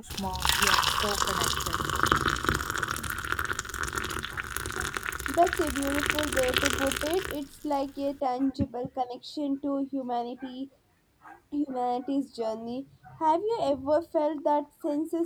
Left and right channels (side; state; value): both; identical; correlation 1.00